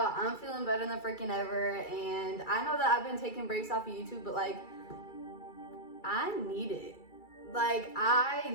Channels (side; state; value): right; late; 2.3 ms